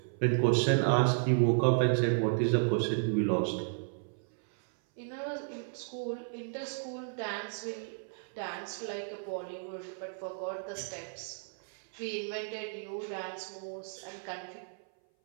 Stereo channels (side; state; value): left; silent; 56 dB below the other